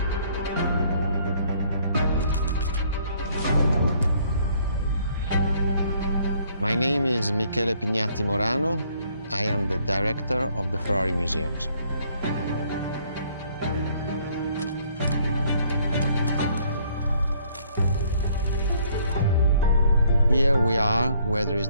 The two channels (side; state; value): both; inverted; correlation -0.64